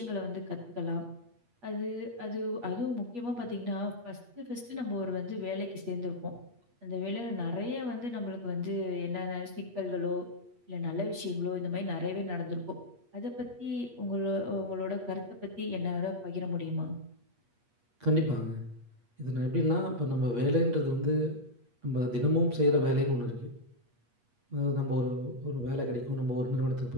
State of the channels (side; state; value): left; late; 8.4 ms